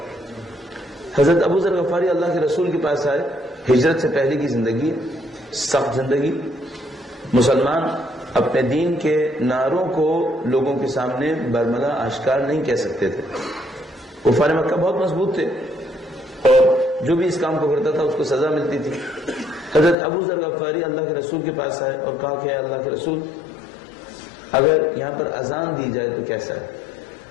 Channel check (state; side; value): drops out; right; at 20.0 s